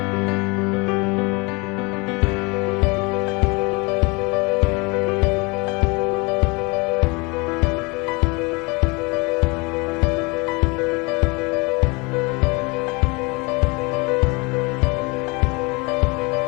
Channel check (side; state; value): right; quieter; 27.8 dB